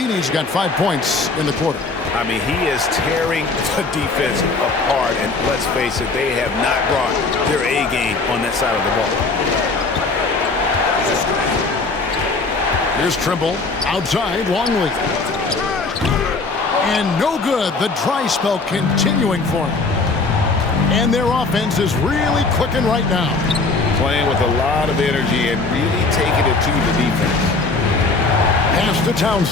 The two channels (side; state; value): right; quieter; 3.8 dB